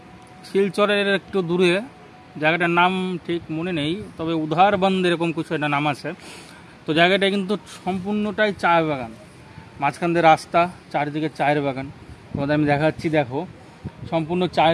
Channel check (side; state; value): both; identical; correlation 1.00